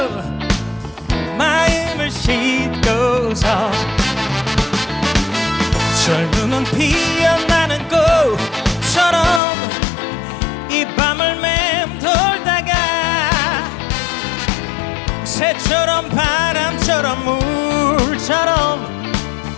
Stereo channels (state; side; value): drops out; right; at 9.4 s